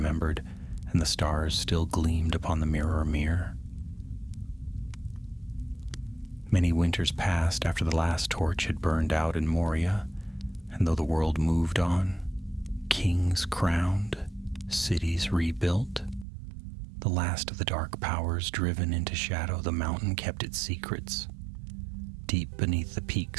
and the stars still gleamed upon the mirror mirror. Many winters passed after the last torch had burned out in Moria, and though the world moved on, kings crowned, cities rebuilt, the last of the dark powers driven into shadow, the mountain kept its secrets. Deep beneath the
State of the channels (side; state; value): left; drops out; at 16.2 s